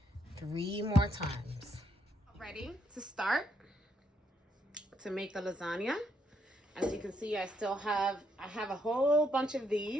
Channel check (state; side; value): normal; both; correlation 0.75